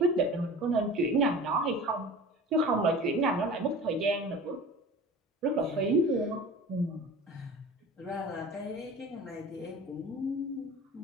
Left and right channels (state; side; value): normal; both; correlation 0.38